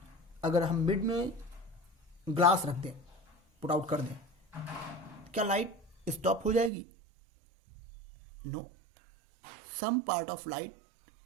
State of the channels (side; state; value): left; drops out; at 6.7 s